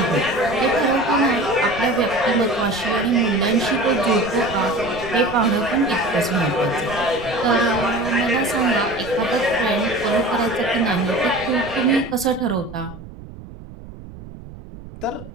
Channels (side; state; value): right; noise; rumble, 16 dB below the sound